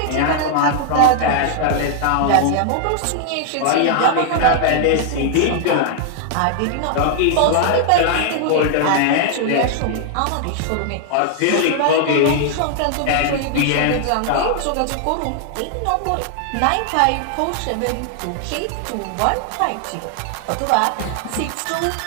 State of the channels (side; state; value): both; different; correlation 0.00